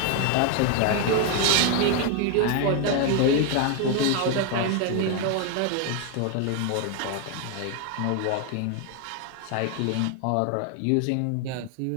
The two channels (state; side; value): different; both; correlation 0.01